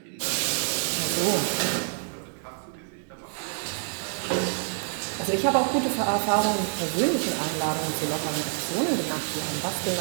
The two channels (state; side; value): silent; left; 60 dB below the other